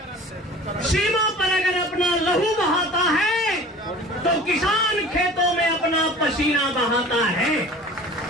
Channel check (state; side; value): normal; both; correlation 0.42